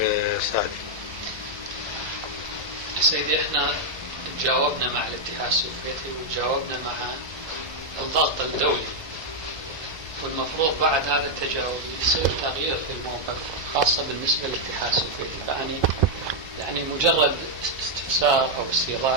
سعدي. سيدي احنا تجاوبنا مع الاتحاد السوفيتي وتجاوبنا مع الضغط الدولي، والمفروض بعد هذا التجاوب يصير تغيير في الموقف خاصة بالنسبة للاتحاد السوفيتي. فأني يعني مجرد استفسار أو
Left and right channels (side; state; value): left; late; 1.2 ms